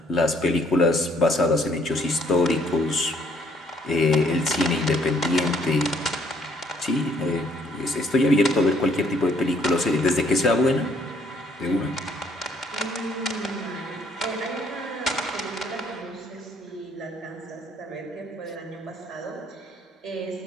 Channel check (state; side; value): normal; both; correlation 0.65